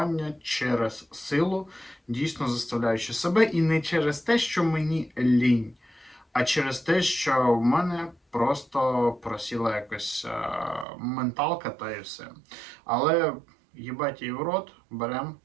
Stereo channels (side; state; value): left; drops out; at 10.9 s